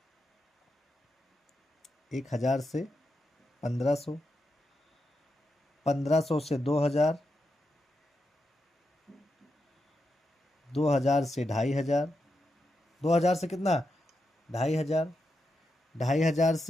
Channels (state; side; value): normal; both; correlation 0.86